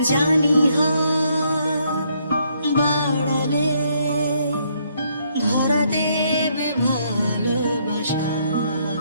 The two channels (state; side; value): inverted; both; correlation -0.71